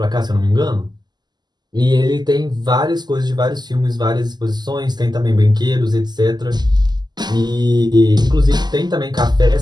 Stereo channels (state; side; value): late; left; 0.21 ms